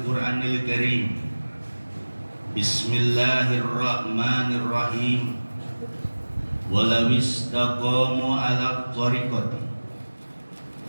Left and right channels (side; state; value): both; inverted; correlation -1.00